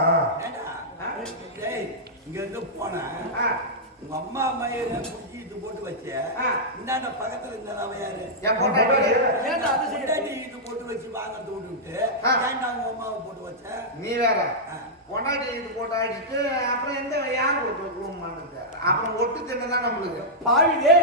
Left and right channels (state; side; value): normal; both; correlation -0.10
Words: இங்க இருந்து போனேன். உங்க அம்மா மயில குடிச்சிட்டு போட்டு வச்ச இந்தாண்ட பக்கத்துல இருந்தா யாரு? என் பொண்டாட்டி ஏன்டா அது சைடாடி இது போட்டு வச்சு வாங்க தோண்டு விட்டு ஏன்டா உங்க அம்மாவை போட்டு வச்ச? நீ வேற பொண்டாட்டி இது போட்டு அடிச்சுட்டு அப்புறம் எந்த யார் போட்டு அப்புறம் ஒட்டு தின்னதான் நம்மளுக்கு பாவிலே